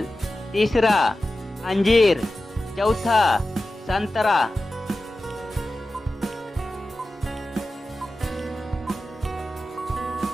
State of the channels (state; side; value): normal; both; correlation 0.94